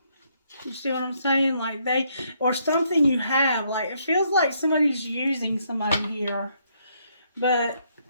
You see what I'm saying? Like or something you have. Like, it feels like somebody's using somebody here. But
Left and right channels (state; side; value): inverted; both; correlation -0.72